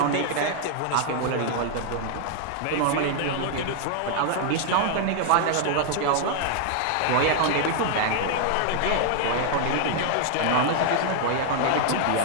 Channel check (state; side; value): different; both; correlation 0.00